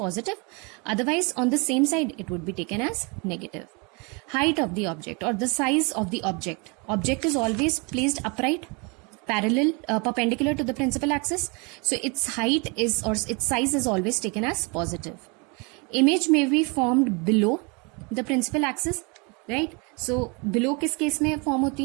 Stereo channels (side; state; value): left; quieter; 31.1 dB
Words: Otherwise, on the same side, it would be taken as negative. Height of the object or the size of the object. Object is always placed upright, parallel, perpendicular to the principal axis. So its height is, or its size is always taken as positive. Image may be formed below the principal axis, right? So below किस case में form